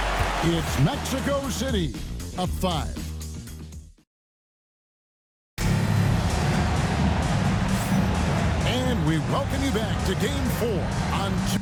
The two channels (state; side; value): identical; both; correlation 1.00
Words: It's Mexico City up 5. And we welcome you back to Game 4 on